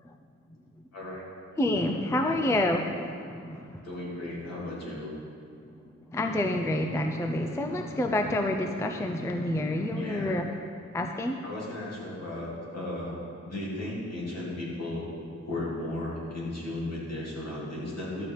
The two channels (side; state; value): both; normal; correlation 0.62